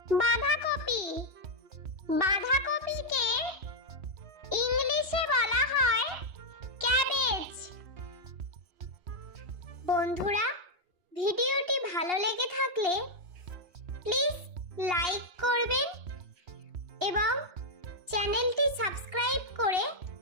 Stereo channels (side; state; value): left; late; 2.8 ms